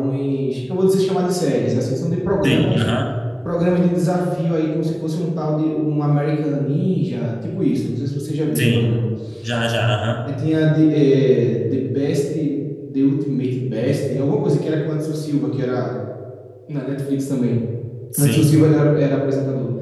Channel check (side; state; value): both; identical; correlation 1.00